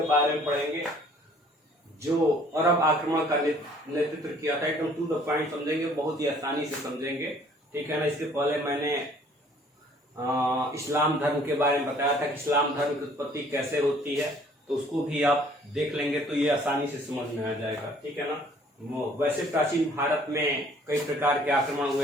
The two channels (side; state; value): both; normal; correlation 0.57